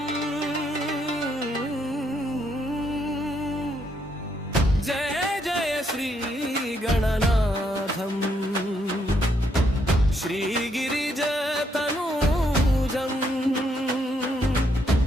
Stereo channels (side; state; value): both; normal; correlation 0.74